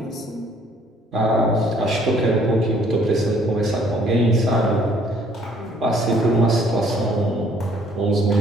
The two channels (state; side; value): normal; both; correlation 0.61